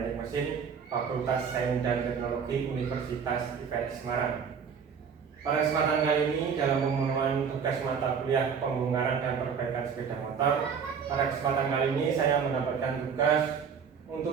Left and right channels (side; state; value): left; quieter; 6.6 dB